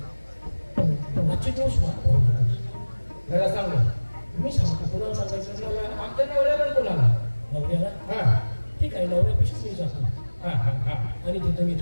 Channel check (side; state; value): both; inverted; correlation -1.00